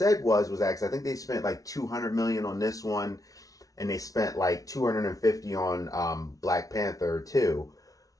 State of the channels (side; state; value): right; late; 0.17 ms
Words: was actually, I think they spent like 200 million on this one, and they spent like 250 on Black Panther 2.